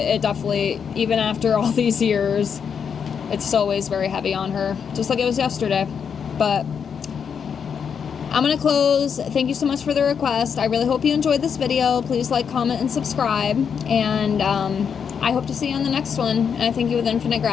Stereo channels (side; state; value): right; quieter; 7.0 dB